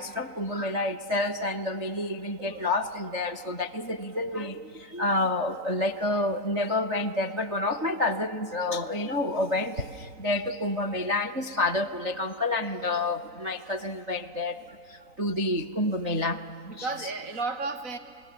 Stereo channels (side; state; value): left; late; 3.9 ms